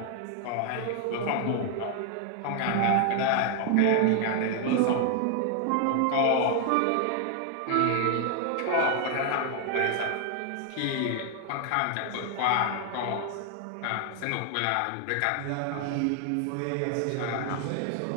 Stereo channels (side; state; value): both; different; correlation 0.00